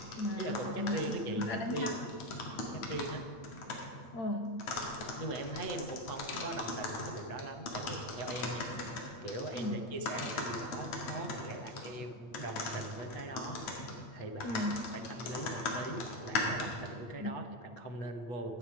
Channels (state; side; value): late; right; 8.6 ms